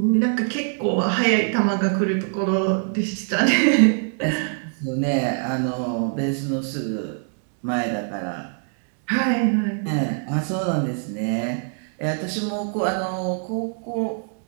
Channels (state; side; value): silent; left; 63 dB below the other